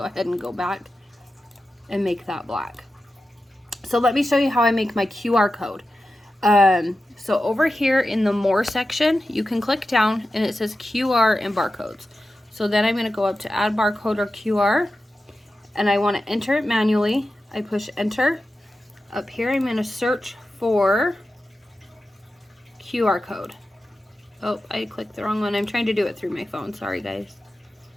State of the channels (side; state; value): both; normal; correlation 0.92